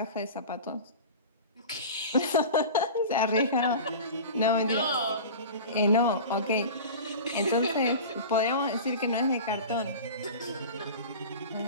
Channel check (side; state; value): both; inverted; correlation -0.34